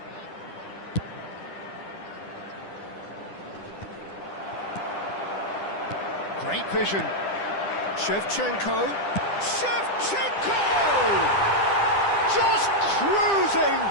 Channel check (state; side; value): late; right; 10 ms